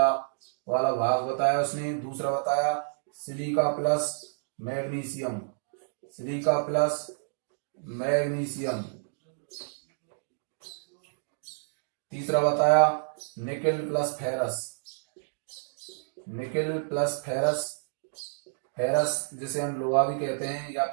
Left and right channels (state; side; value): silent; left; digital silence